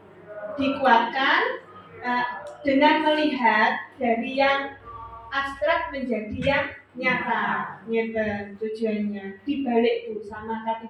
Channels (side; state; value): both; identical; correlation 1.00